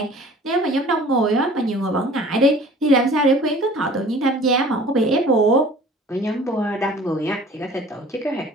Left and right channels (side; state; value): both; normal; correlation 0.47